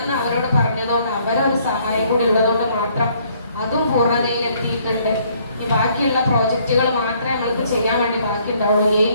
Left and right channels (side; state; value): both; inverted; correlation -0.65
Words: അവരോട് പറഞ്ഞതുകൊണ്ട് അവരൊരു സഹായം കൂടി ഉള്ളതുകൊണ്ട് മാത്രം അതും പൂർണ്ണതയിലെത്തിയിട്ടുണ്ട്. ഈ ബാക്കിയുള്ള പ്രോജക്റ്റുകൾ മാത്രമേ നമ്മൾക്ക് ചെയ്യാൻ വേണ്ടി ബാക്കി ഉണ്ടാവുള്ളൂ.